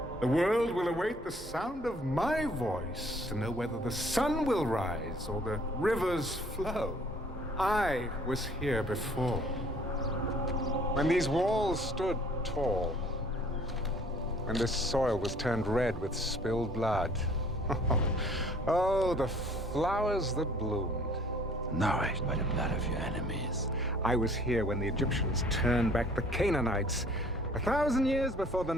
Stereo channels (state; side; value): normal; both; correlation 0.56